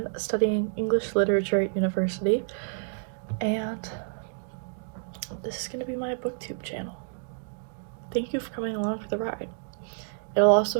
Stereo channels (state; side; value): silent; left; digital silence